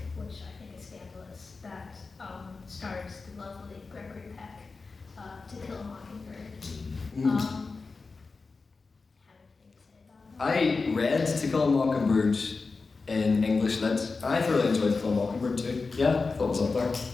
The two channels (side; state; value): right; quieter; 4.2 dB